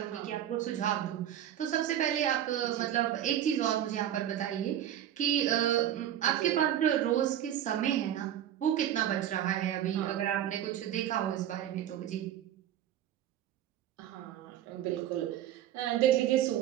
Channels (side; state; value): left; quieter; 11.1 dB